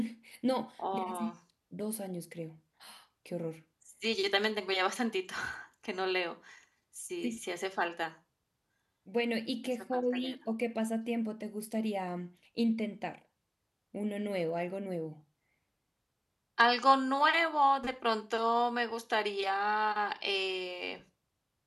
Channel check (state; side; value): identical; both; correlation 1.00